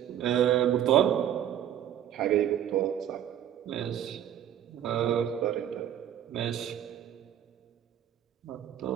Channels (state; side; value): quieter; left; 10.6 dB